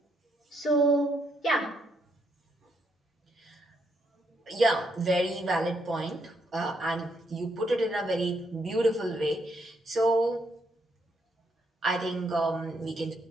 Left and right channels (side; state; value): both; normal; correlation 0.76